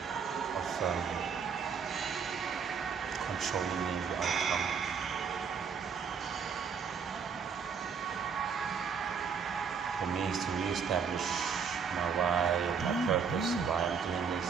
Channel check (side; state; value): left; quieter; 6.3 dB